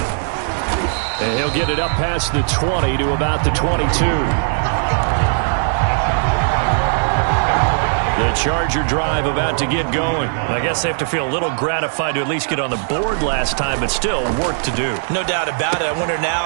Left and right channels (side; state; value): left; silent; digital silence